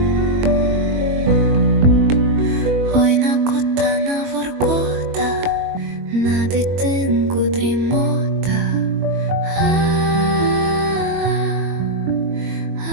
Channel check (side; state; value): left; late; 21 ms